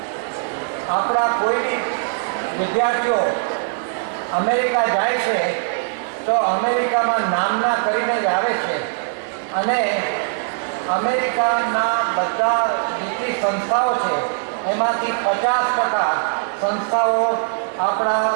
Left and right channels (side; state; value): left; silent; digital silence